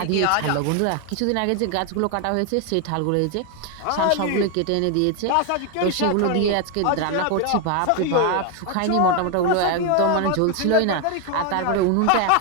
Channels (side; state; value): both; different; correlation 0.01